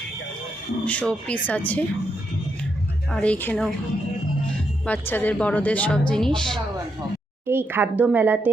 শো পিস আছে, আর এইখানেও বাচ্চাদের বড়দের সব জিনিস। এই খাদ্য মেলাতে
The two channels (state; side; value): normal; both; correlation 0.81